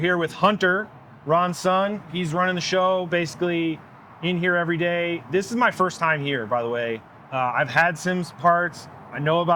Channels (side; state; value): both; identical; correlation 1.00